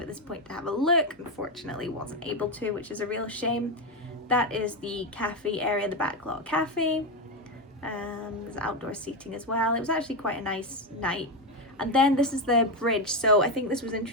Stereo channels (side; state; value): both; normal; correlation 0.10